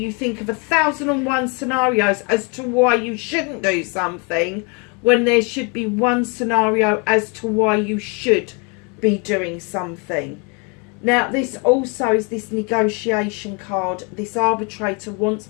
think of 1,001 scenarios as to why you shouldn't do something, when there should be one scenario as to why you should be doing something. Now this also is this negotiation card. This Arbitrator wants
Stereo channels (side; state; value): right; quieter; 33.3 dB